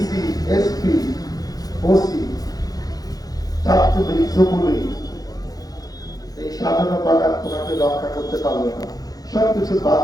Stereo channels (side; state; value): right; late; 0.18 ms